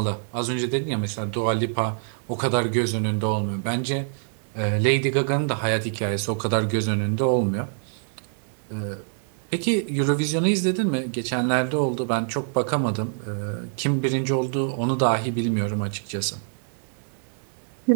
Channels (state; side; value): silent; left; digital silence